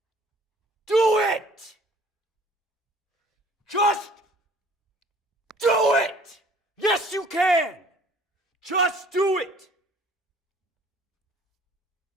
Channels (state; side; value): normal; both; correlation 0.54